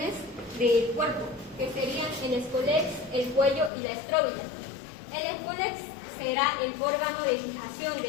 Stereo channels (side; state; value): right; drops out; at 3.7 s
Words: del cuerpo, que serían el escolex, el cuello y la estróbila. El escolex será el órgano de fijación